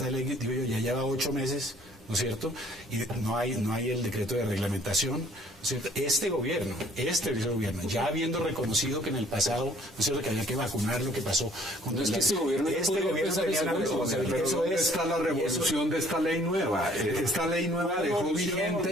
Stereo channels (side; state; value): both; normal; correlation 0.58